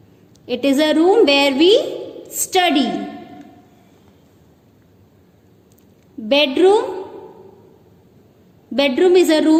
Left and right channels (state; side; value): identical; both; correlation 1.00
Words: it is a room where we study. Bedroom. Bedroom is a